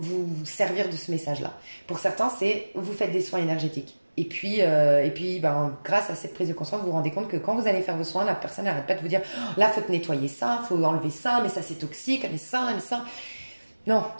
servir de ce message-là. Pour certains, c'est vous faites des soins énergétiques. Et puis ben, grâce à cette prise de conscience, vous vous rendez compte que quand vous allez faire vos soins, la personne n'arrête pas de vous dire oh, là, il faut te nettoyer ça, il faut enlever ça, mais ça c'est toxique, mais ça, mais ça. Non,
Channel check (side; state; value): both; inverted; correlation -1.00